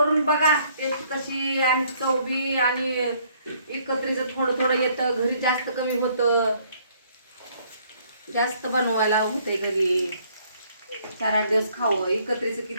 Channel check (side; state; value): both; inverted; correlation -0.64